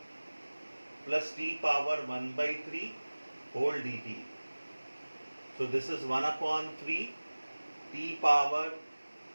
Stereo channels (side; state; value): both; inverted; correlation -1.00